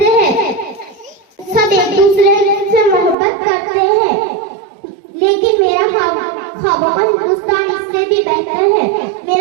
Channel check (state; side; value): drops out; left; at 3.2 s